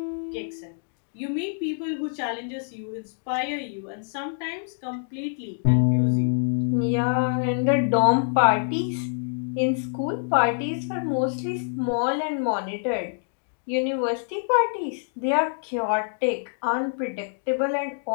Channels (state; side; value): silent; right; digital silence